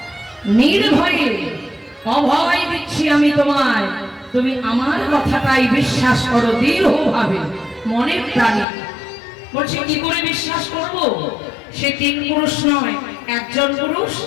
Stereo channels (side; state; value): right; drops out; at 8.7 s